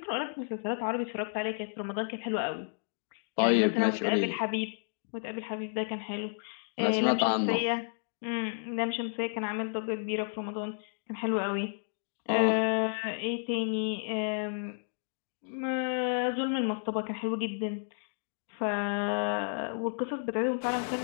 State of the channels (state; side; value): silent; right; digital silence